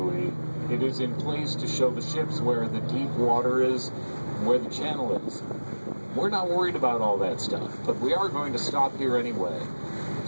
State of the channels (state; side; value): inverted; both; correlation -1.00